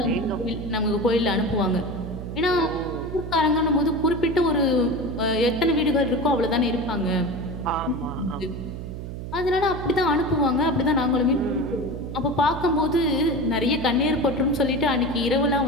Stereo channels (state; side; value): noise; right; hum, 8 dB below the sound